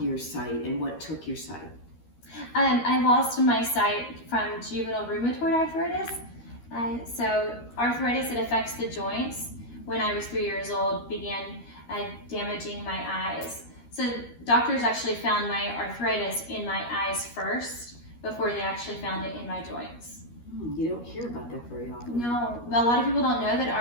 your sight and what took your sight. I lost my sight from juvenile rheumatoid arthritis. So arthritis, it affects the joints. When I was 3 years old, began damaging my eyes. So doctors actually found my arthritis in my eyes first before they actually found it in my joints. You don't hear about that very often. No, well, a lot of people don't know that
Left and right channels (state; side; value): late; right; 13 ms